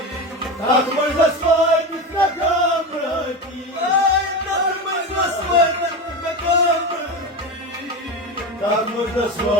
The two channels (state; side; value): normal; both; correlation 0.22